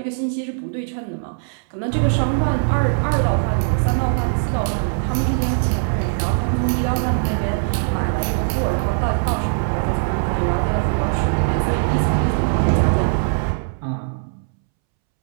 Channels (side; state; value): left; silent; 65 dB below the other